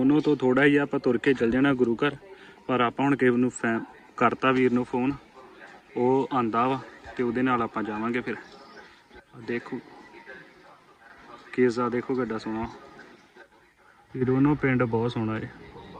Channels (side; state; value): both; identical; correlation 1.00